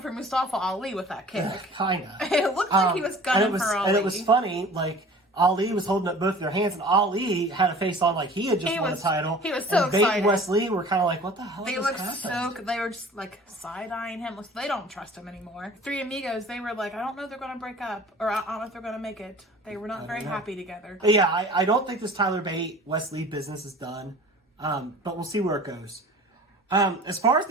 for Mustafa Ali with that kick. Kinda. It looked like he was gunning for Ali. And it was funny, like, Ali was holding up both their hands, and Ali had a face on like he had just won the title. He was so excited. Bate and Wes Lee were kind of like, what the hell They were just, like, side-eyeing him. They don't trust him anymore. Three Amigos, they were like, I don't know if they're going to break up, or I don't know if they're going to make it. They were not very happy together. But yeah, I don't think this Tyler Bate, Wes Lee business is done, but we'll see where it goes. As far as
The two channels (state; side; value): normal; both; correlation 0.44